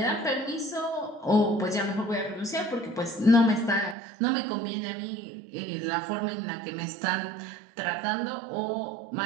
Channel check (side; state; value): left; drops out; at 4.0 s